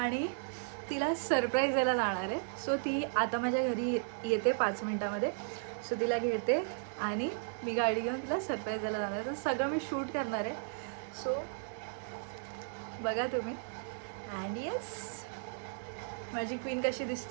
तिला सरप्राईज द्यायला जाणार आहे. सो ती आता माझ्या घरी येते 5 मिनटामध्ये. सो तिला घेते आणि मी गाडी घेऊन तिला सरप्राईज द्यायला जाणार आहे. तर सगळं मी शूट करणार आहे. सो बघा तुम्ही. अँड येस, माझी क्वीन कशी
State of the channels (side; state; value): left; silent; digital silence